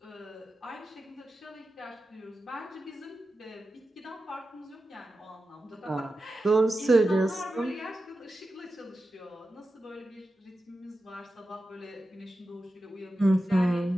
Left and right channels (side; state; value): both; normal; correlation 0.92